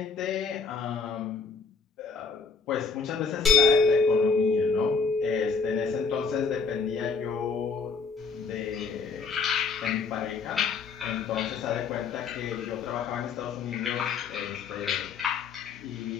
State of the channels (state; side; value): quieter; right; 4.9 dB